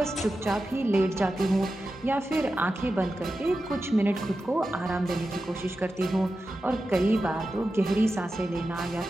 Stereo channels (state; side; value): normal; both; correlation 0.92